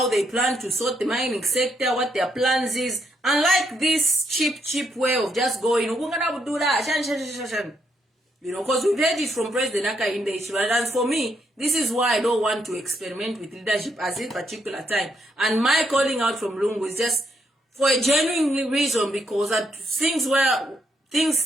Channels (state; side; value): normal; both; correlation 0.77